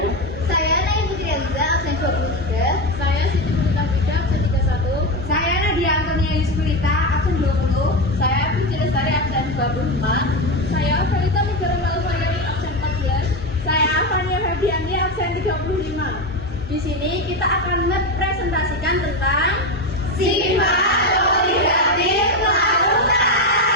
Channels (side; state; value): both; normal; correlation 0.15